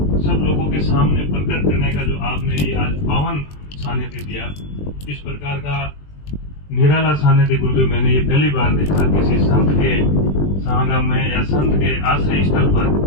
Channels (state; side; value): late; right; 20 ms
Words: सब लोगों के सामने प्रकट करने का जो आपने ये आज पावन सानिध्य दिया, इस प्रकार का निराला सानिध्य गुरुदेव मैंने ये पहली बार देखा किसी संत के समागम में या संत के आश्रय स्थल पर